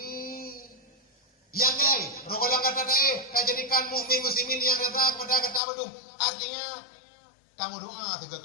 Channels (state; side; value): drops out; right; at 5.6 s